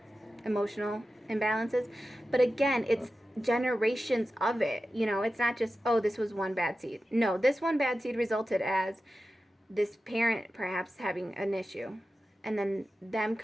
emotional imbalances, but again, it's generations of it. It's not just, oh, this was one bad seed. No, this one bad seed resulted as this parent perhaps having an issue, and then them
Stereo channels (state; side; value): normal; both; correlation 0.93